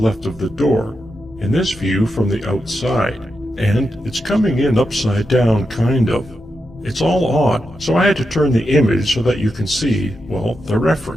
of the door, in this view from the outside, and it's coming in upside down kind of. It's all odd, so I had to turn the image so that you can see, well, the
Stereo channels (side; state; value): both; normal; correlation 0.87